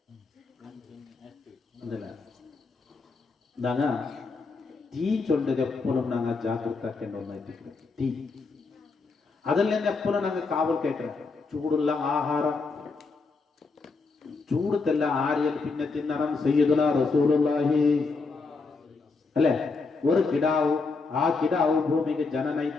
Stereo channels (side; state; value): right; quieter; 4.2 dB